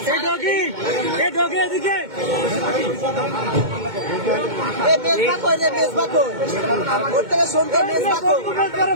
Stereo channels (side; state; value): left; late; 2.2 ms